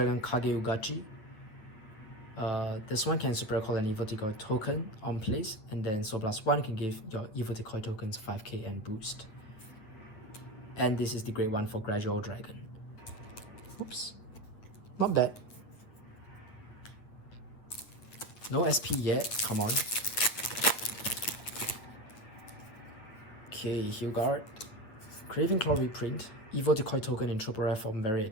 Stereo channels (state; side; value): late; right; 9.3 ms